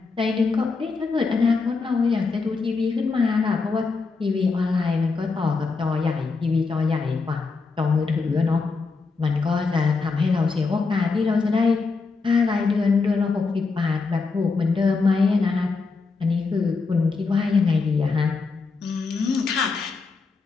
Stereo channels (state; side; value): quieter; right; 4.3 dB